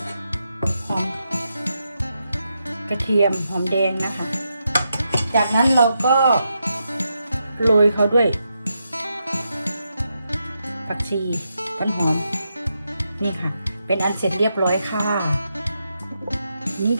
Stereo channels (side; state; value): both; inverted; correlation -0.84